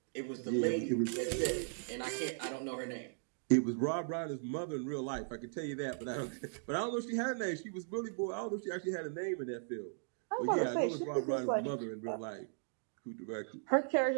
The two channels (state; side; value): silent; left; digital silence